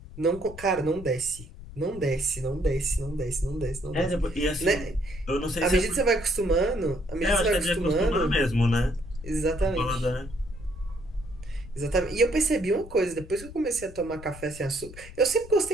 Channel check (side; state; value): left; noise; rumble, 15 dB below the sound